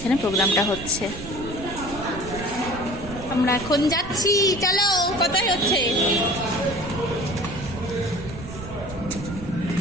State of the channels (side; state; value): right; noise; rumble, 12 dB below the sound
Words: প্রোগ্রামটা হচ্ছে। আমরা এখন যাচ্ছি, চলো। কোথায় হচ্ছে?